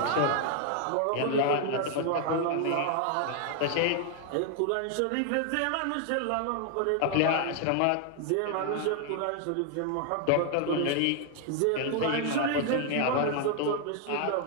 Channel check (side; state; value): both; different; correlation 0.00